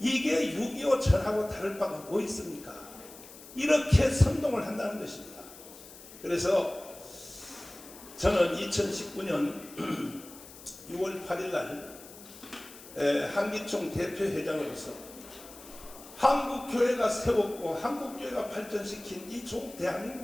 6.25 전하고 다를 바가 뭐 있습니까? 이렇게 선동을 한다는 것입니다. 그래서 저는 2019년 6월 8일 날 한기총 대표회장으로서 한국교회가 세웠고 한국교회가 발전시킨 이 종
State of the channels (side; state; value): left; noise; hiss, 18 dB below the sound